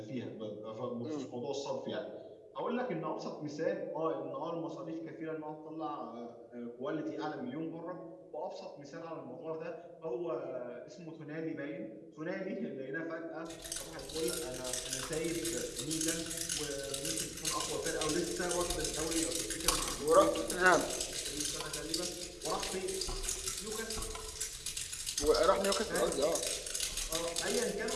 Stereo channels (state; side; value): identical; both; correlation 1.00